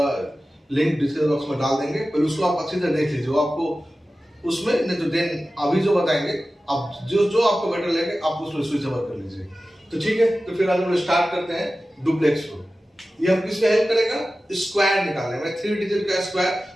लिंक डिस्क्रिप्शन बॉक्स में डाल देंगे, पहले उसको आप अच्छी तरह देख लीजिए। आपको उसमें नहीं तो देन अभी जो बताएंगे आप जो आपको बेटर लगे आप उसमें स्विच ओवर कर लीजिए। तो ठीक है, तो फिर आज हम स्टार्ट करते हैं डुप्लेक्स रूल। ये हम किस में हेल्प करेगा? स्क्वायर निकालने में, 3 डिजिट का स्क्वायर।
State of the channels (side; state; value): both; normal; correlation 0.95